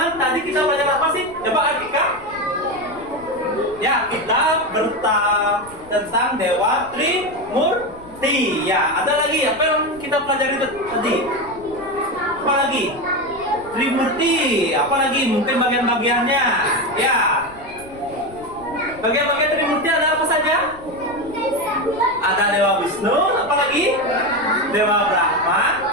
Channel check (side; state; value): left; noise; rumble, 21 dB below the sound